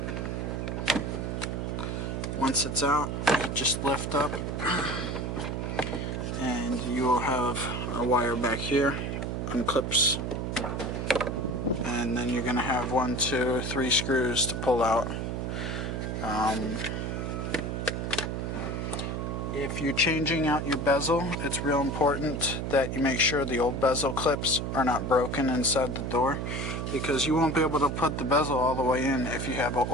Once it's out, you just lift up and you will have a wire back here, unclips, and then you're going to have 1, 2, 3 screws to pull out. If you're changing out your bezel, it's real important that you make sure the old bezel clips are not broken inside the door, because you won't be able to put the bezel all the way in if you have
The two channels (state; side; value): noise; right; hum, 2 dB below the sound